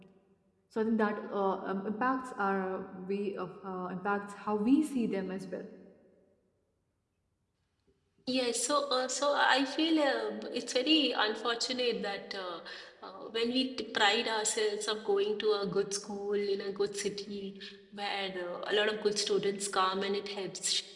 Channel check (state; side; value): identical; both; correlation 1.00